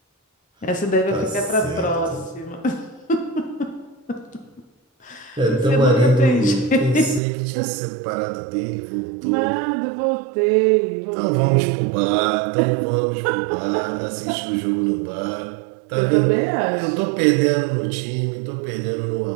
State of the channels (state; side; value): drops out; left; at 7.2 s